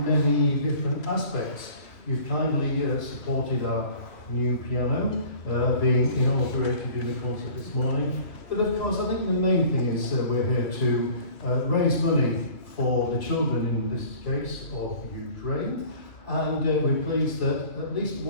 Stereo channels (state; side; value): late; right; 2.5 ms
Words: different aspects. You've kindly supported our new piano being inaugurated in the concert this morning. But of course, I think the main thing is we're here to raise money for the children, in this case, of Ukraine. And we're pleased that at least